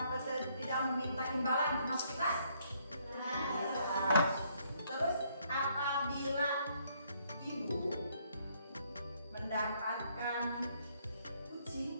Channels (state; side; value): inverted; both; correlation -0.69